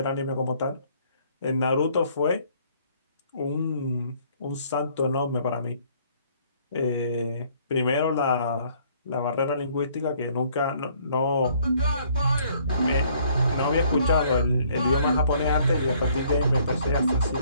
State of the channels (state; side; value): inverted; both; correlation -0.62